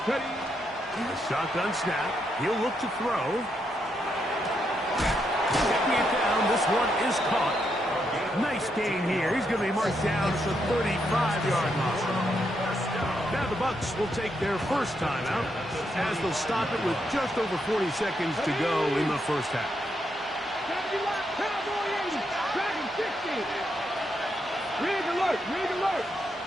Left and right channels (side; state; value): both; normal; correlation 0.80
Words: Steady. Shotgun snap. He'll look to throw. Checking it down. This one is caught. Nice gain here. He's going to be marked down at the 35-yard line. Now the Bucs will take their first timeout as they'll stop it with just over 40 seconds to go in the first half. 70 left. Cowboy 80. Dragon 60. Rig alert. Rig alert.